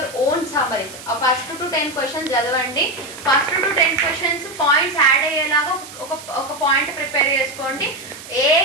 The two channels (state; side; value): noise; right; hiss, 15 dB below the sound